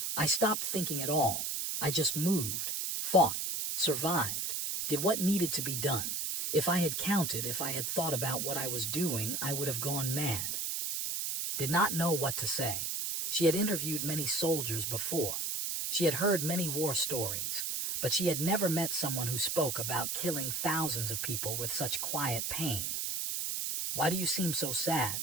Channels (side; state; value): right; noise; hiss, 1 dB below the sound